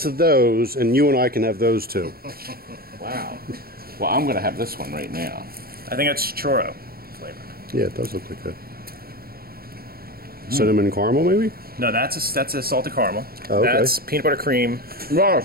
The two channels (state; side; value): late; left; 0.44 ms